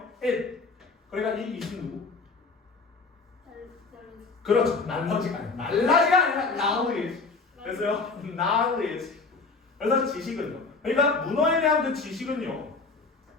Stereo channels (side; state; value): right; quieter; 4.2 dB